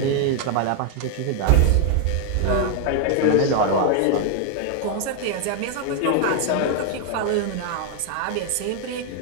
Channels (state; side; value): different; both; correlation 0.00